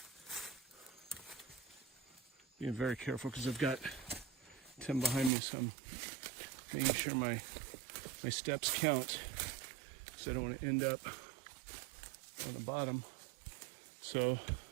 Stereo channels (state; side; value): drops out; left; at 5.3 s